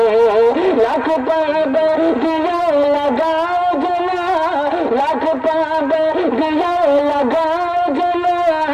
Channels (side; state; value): both; identical; correlation 1.00